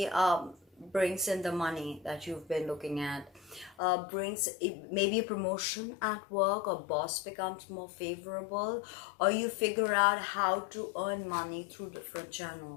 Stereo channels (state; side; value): drops out; right; at 3.8 s